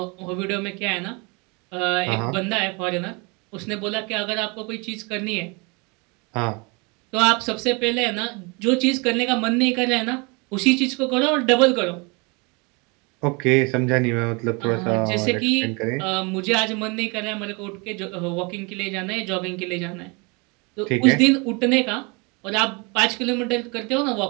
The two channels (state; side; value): quieter; left; 29.6 dB